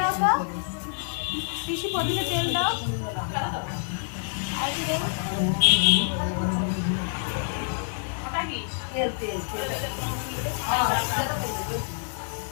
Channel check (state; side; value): silent; right; 60 dB below the other